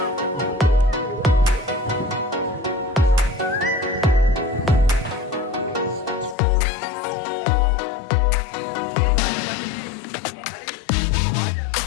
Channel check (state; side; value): drops out; right; at 6.4 s